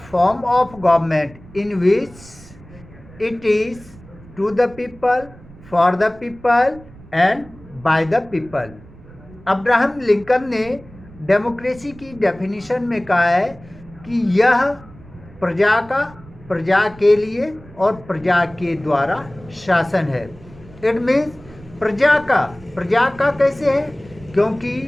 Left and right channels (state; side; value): noise; right; rumble, 21 dB below the sound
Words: of government in which it is to the people, for the people and by the people. Abraham Lincoln ने democracy की definition में कहा है कि यह प्रजा के लिए और प्रजा के द्वारा शासन है. इट मीन्स प्रजा का कैसे है, क्योंकि